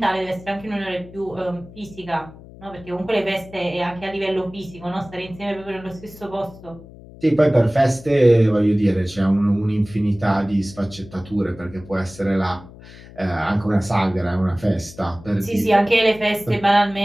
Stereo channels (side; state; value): left; noise; hum, 19 dB below the sound